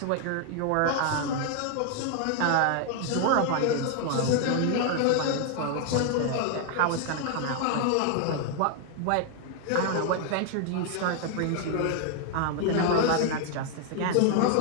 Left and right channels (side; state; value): both; different; correlation 0.00